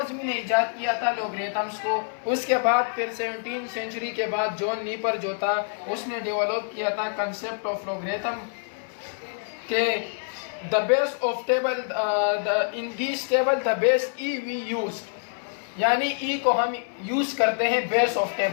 ने इजाद किया था लोगरिथम्स को। उसके बाद फिर 17वीं सेंचुरी के बाद जॉन नीपर जो था उसने डेवलप किया था कंसेप्ट ऑफ लोगरिथम के the base of table in this table the base E V used, यानी ई को हम यूज करते हैं बेस ऑफ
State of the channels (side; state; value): right; silent; 58 dB below the other